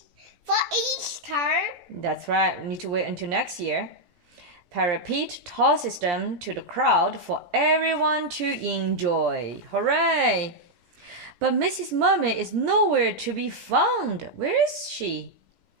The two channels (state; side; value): late; left; 17 ms